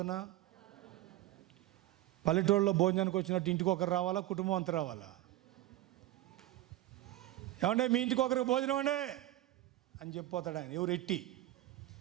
పల్లెటూళ్ళలో భోజనానికి వచ్చినట్టు ఇంటికి ఒకరు రావాలా, కుటుంబం అంతా రావాలా? ఏమంటే మీ ఇంటికి ఒకరికి భోజనం అండి అని చెప్పిపోతాడు ఆయన.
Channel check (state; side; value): quieter; left; 15.5 dB